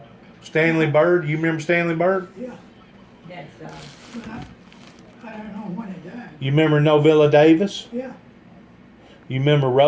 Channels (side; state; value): both; identical; correlation 1.00